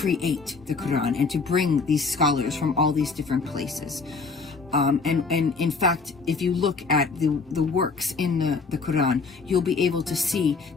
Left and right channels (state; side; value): quieter; right; 4.5 dB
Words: the Quran and to bring these scholars from all these different places. And in fact, if you look at the works in the Quran, you'll be able to see